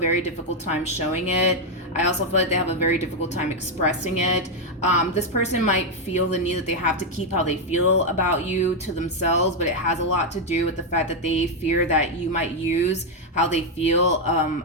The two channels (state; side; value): normal; both; correlation 0.01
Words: difficult time showing it. I also feel like they have a very difficult time expressing it. This person might feel the need that they have to keep how they feel about you to themselves, but it has a lot to do with the fact that they fear that you might use how they feel